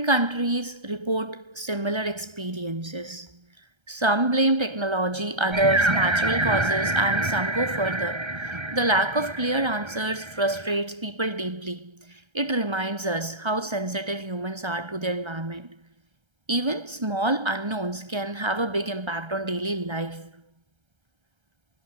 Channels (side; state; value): left; late; 1.3 ms